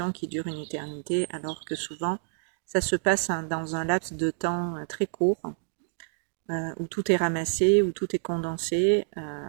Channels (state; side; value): silent; left; digital silence